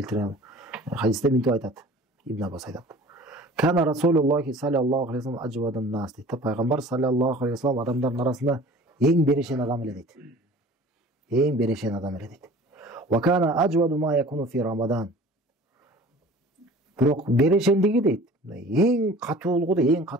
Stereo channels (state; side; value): normal; both; correlation 0.45